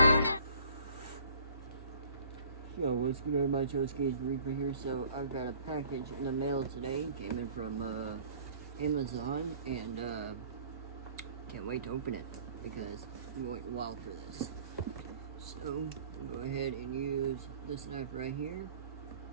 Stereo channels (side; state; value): both; inverted; correlation -0.53